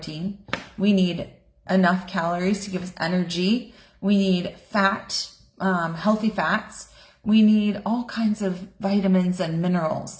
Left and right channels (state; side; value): identical; both; correlation 1.00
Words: We need enough calories to give us energy. We need fat, healthy fats. We need all kinds of vitamins and